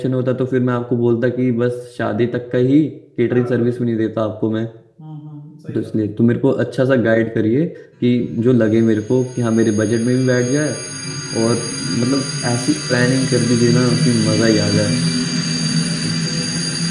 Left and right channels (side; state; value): both; identical; correlation 1.00